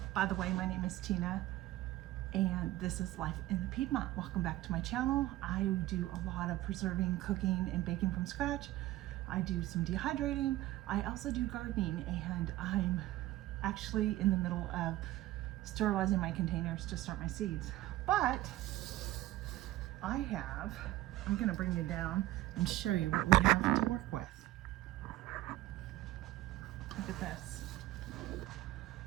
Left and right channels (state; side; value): quieter; left; 16.1 dB